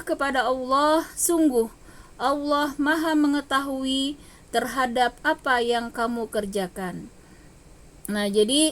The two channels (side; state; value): both; identical; correlation 1.00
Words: kepada Allah, sungguh Allah Maha mengetahui terhadap apa yang kamu kerjakan. Nah,